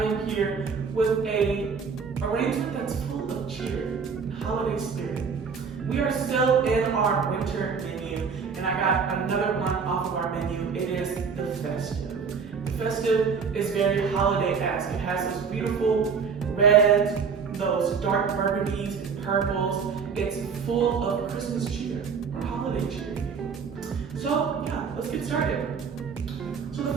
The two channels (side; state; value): left; quieter; 5.9 dB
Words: am here with a arrangement that's full of cheer and holiday spirit. We are still in our winter menu, and I got another one off of our menu. It is the festive. The festive is very holiday-esque. It has those beautiful reds, those dark burgundies and purples. It's full of Christmas cheer or holiday cheer. So yeah, let's get started. So the